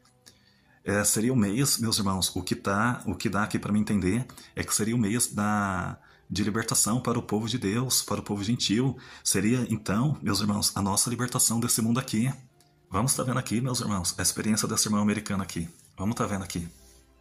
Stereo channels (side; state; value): both; identical; correlation 1.00